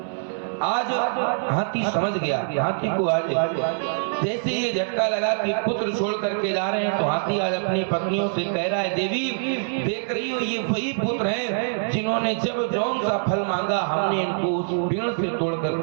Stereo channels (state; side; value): silent; left; 61 dB below the other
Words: आज हाथी समझ गया, हाथी को आज जैसे ये झटका लगा कि पुत्र छोड़ करके जा रहे हैं तो हाथी आज अपनी पत्नियों से कह रहा है, देवी देख रही हो ये वही पुत्र हैं जिन्होंने जब जौन सा फल मांगा हमने इनको उस पेड़ से तोड़